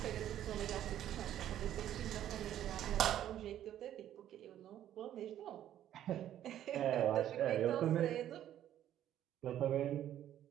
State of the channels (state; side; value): quieter; left; 11.5 dB